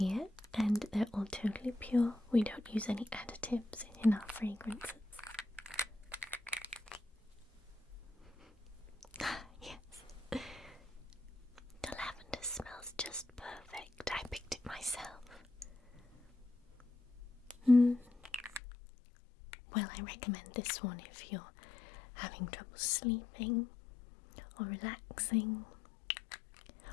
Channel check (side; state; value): right; drops out; at 18.6 s